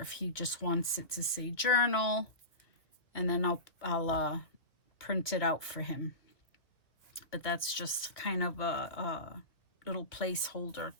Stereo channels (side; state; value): right; late; 1.9 ms